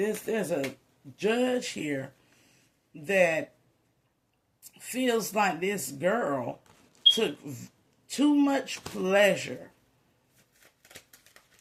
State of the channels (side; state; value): both; identical; correlation 1.00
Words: a judge here that feels like this girl took too much pleasure